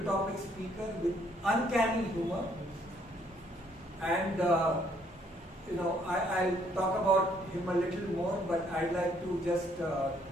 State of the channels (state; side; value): normal; both; correlation 0.67